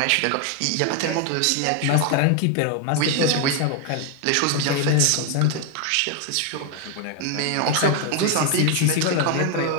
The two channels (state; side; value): different; both; correlation 0.01